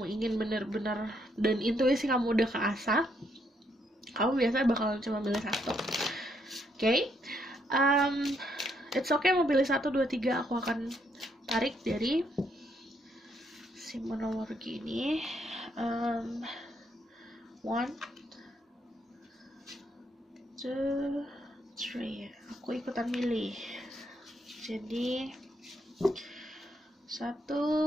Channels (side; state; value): both; normal; correlation 0.74